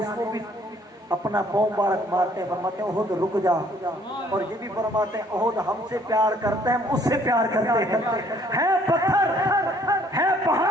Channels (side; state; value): both; normal; correlation 0.61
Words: کو بھی اپنا پاؤں مبارک مارتے ہیں، فرماتے ہیں احد رک جا، اور یہ بھی فرماتے ہیں احد ہم سے پیار کرتے ہیں، ہم اس سے پیار کرتے ہیں، ہے پتھر ہے